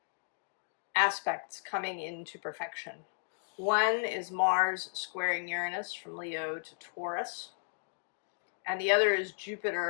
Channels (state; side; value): silent; right; digital silence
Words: aspects coming into perfection. One is Mars squaring Uranus from Leo to Taurus, and the other is